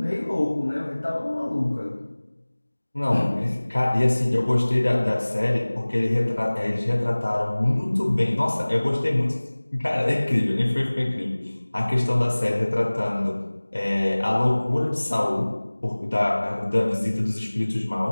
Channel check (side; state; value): both; inverted; correlation -1.00